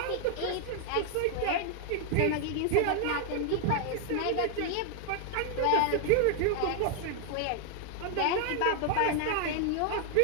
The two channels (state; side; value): different; both; correlation 0.00